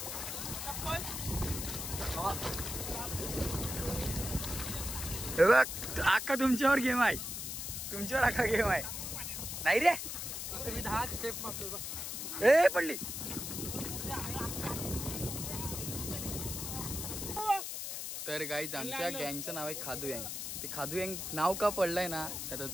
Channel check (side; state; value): left; noise; hiss, 5 dB below the sound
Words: हे बघ अख्खा तुमच्यावर गेम आहे. तुमच्यावर अख्खा गेम आहे. नाही रे मी 10 स्टेप मारतोय बघ. ए पडली. तर गाईज आमच्या गँगचं नाव आहे खादू गँग. ते खादू गँग नाव का पडलंय ना आता